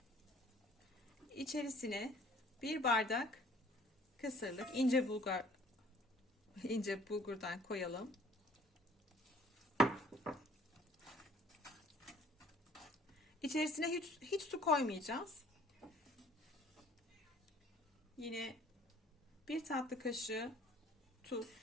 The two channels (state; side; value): normal; both; correlation 0.55